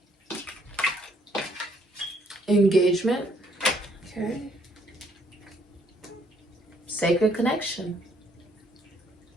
Engagement. Okay. Sacred connection.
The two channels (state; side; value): normal; both; correlation 0.67